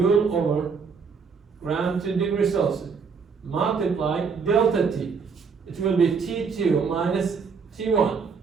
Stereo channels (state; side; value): quieter; left; 5.5 dB